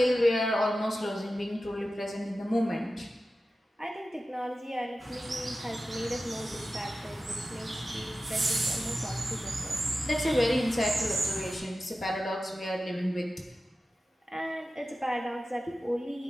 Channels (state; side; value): normal; both; correlation 0.94